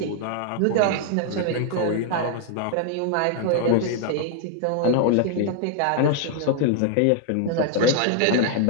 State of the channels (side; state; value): both; different; correlation 0.00